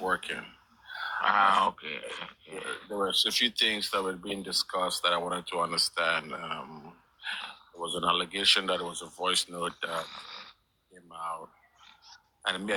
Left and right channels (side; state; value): both; identical; correlation 1.00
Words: working. Okay. There were a few things that were being discussed that I wanted to understand. There was an allegation that it was a voice note that came out, and me, I